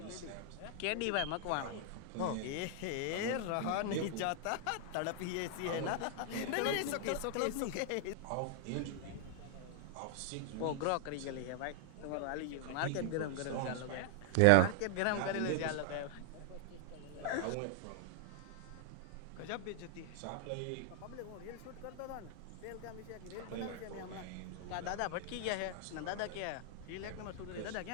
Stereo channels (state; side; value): different; both; correlation 0.00